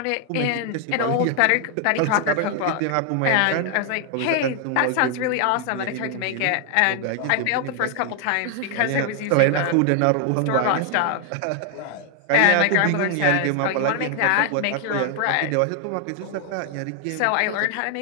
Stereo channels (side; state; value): both; different; correlation 0.00